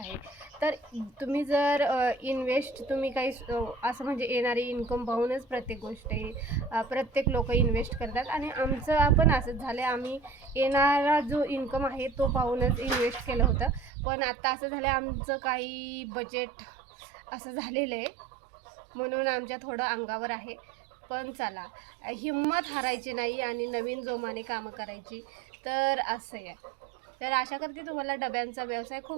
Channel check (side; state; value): left; drops out; at 13.9 s